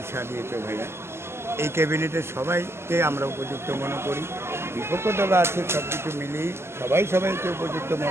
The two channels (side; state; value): left; late; 0.12 ms